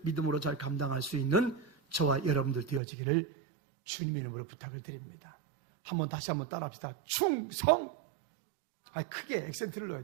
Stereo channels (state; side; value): drops out; left; at 2.8 s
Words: 믿음으로 잘 감당할 수 있는 저와 여러분들 되어지기를 주님의 이름으로 부탁을 드립니다. 다시 한번 따라합시다. 충성. 크게 액센트를 넣어야